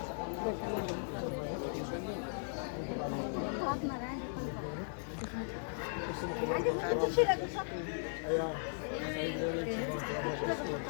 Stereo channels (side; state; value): right; silent; 53 dB below the other